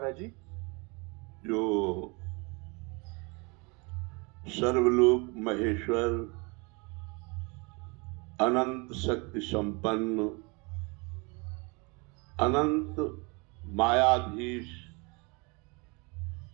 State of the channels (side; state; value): left; quieter; 29.4 dB